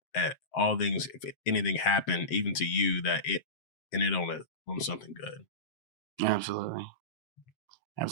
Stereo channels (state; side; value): late; right; 7.7 ms